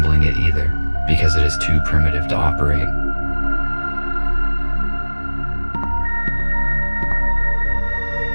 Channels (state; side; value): inverted; both; correlation -1.00